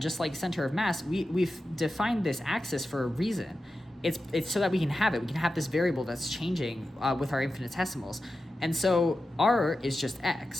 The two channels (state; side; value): normal; both; correlation 0.92